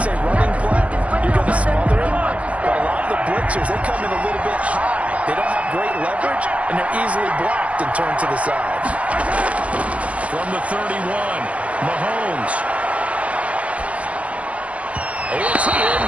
a running play, you're going to smother it. But a lot of the blitzers, they come in a little bit high. They don't have great leverage, and they're easily blocked and turned to the side. From the 31, Mahomes. It's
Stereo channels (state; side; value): late; left; 0.068 ms